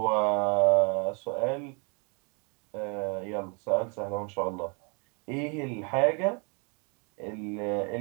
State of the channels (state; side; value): quieter; left; 34.8 dB